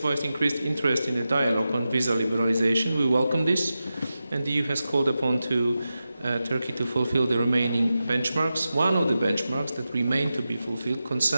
increased interest in the dialogue on visa liberalization. We welcome this, and the EU has called upon Turkey to fulfill the remaining benchmarks. One of the benchmarks that remain to be fulfilled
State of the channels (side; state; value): both; inverted; correlation -0.92